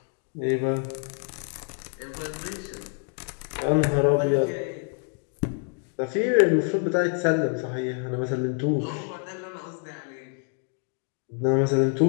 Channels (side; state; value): right; quieter; 38.6 dB